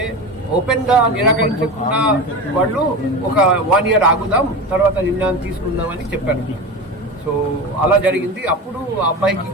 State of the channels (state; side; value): normal; both; correlation 0.26